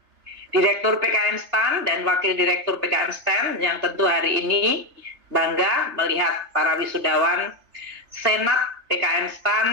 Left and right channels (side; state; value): left; late; 3.3 ms